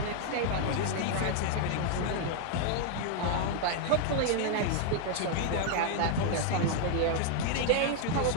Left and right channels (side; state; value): both; different; correlation 0.00